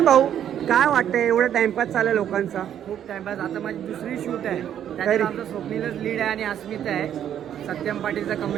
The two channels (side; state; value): left; quieter; 10.0 dB